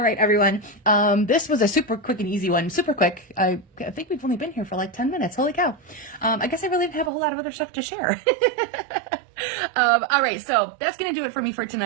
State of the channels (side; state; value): left; drops out; at 7.1 s